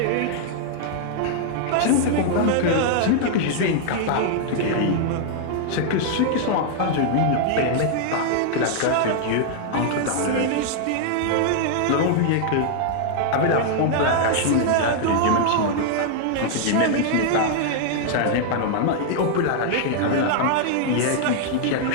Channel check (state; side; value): different; both; correlation -0.01